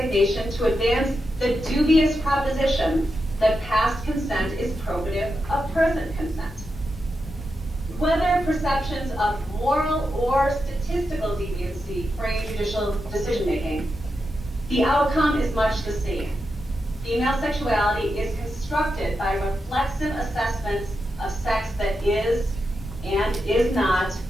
to advance the dubious proposition that past consent is probative of present consent. Whether perceptions of moral or statistical deviancy frame judicial decision-making, the outcome is much the same. Female sexuality is constructed by reflexive assessments of sex that is and is not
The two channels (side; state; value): both; normal; correlation 0.87